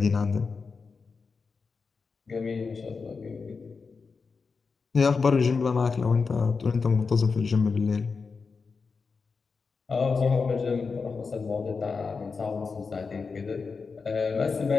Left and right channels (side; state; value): right; quieter; 4.9 dB